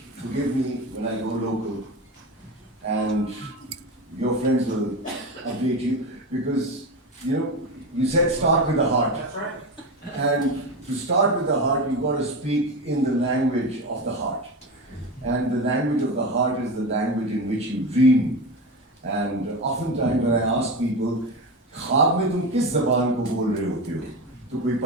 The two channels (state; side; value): normal; both; correlation 0.22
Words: forgive me when I go local, and your friends will update you, because you said start with the heart. That's right. And to start with the heart, you've got to speak in the language of the heart. And the language of the heart is the language in which you dream. And oftentimes when I ask people, ख्वाब में तुम किस ज़बान को बोल रहे होते हो? तो कोई